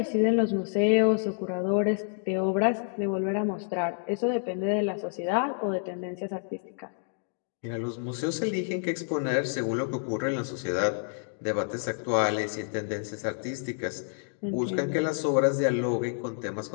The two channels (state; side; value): silent; right; digital silence